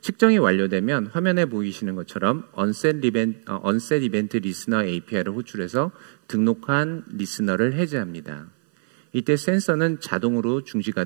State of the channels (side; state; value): left; silent; 60 dB below the other